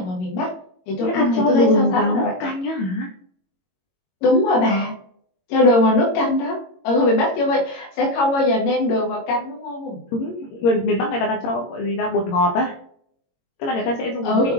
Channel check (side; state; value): right; late; 22 ms